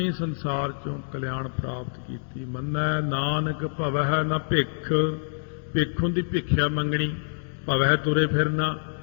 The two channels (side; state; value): right; silent; digital silence